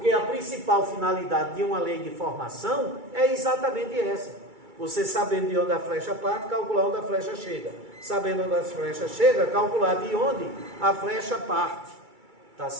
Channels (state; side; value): late; left; 2.3 ms